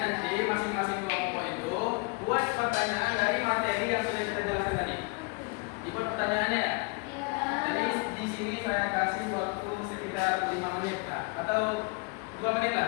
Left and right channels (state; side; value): quieter; right; 29.8 dB